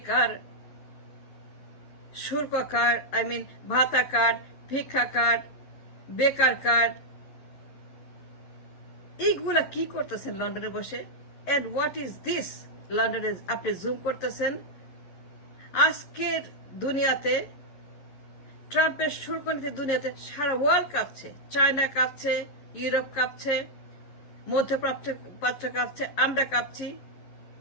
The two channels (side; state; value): right; late; 10 ms